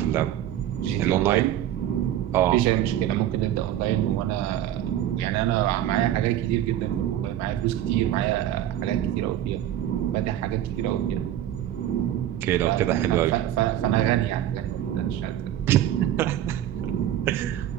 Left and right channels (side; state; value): left; quieter; 11.9 dB